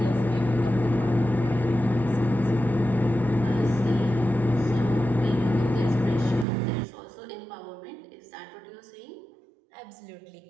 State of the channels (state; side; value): drops out; left; at 6.5 s